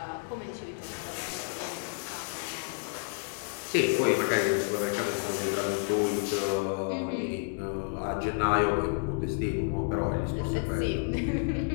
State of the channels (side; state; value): right; silent; 58 dB below the other